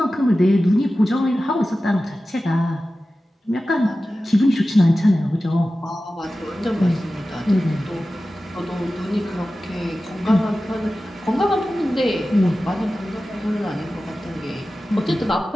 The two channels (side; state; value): both; normal; correlation 0.95